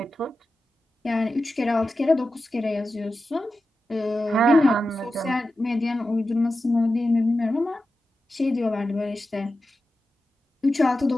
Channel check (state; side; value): normal; both; correlation 0.92